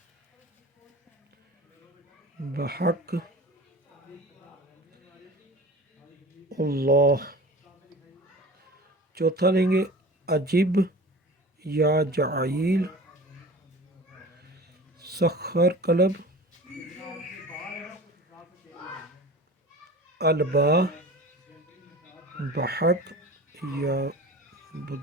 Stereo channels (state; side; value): normal; both; correlation 0.38